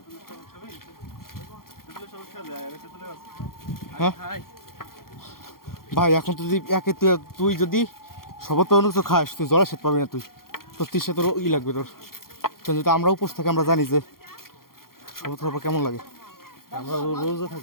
হ্যাঁ খাই ভাই এখন তো যদি তুই যদি সবত অন্য কিছু খাস, তুই জলে সেট পাবি না। তুই তোর তৃষ্ণা তোর লাগবে তোর। যদি আমরা উপোস থাকি আমরা জানি যে শপথ করার পর কেমন লাগে? আমরা রোজা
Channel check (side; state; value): right; late; 0.92 ms